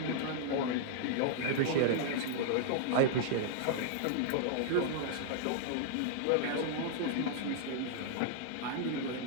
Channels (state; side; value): different; both; correlation -0.01